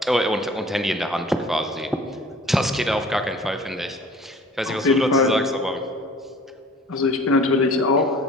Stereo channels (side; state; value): both; normal; correlation 0.47